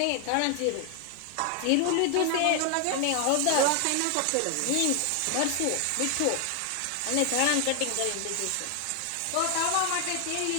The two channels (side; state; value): both; different; correlation 0.00